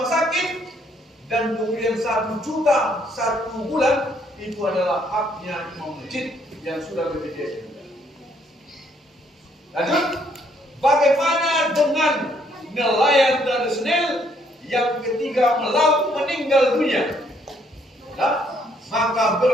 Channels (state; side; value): normal; both; correlation 0.68